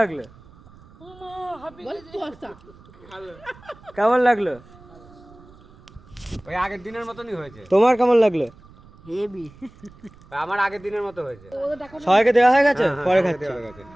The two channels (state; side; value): noise; right; rumble, 24 dB below the sound